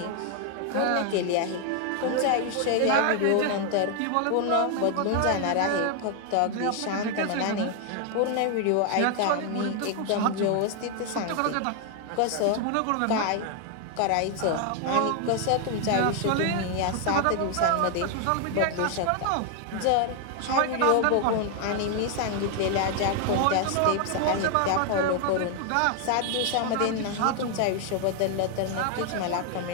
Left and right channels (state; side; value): different; both; correlation 0.00